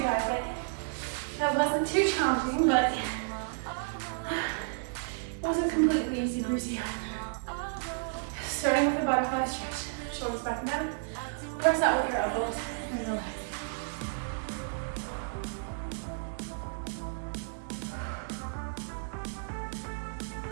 guys. That wasn't too challenging, but it wasn't completely easy breezy either. Starting with a butterfly stretch. Shoulders back and down. Press that with your elbows and your legs.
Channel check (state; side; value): silent; left; 56 dB below the other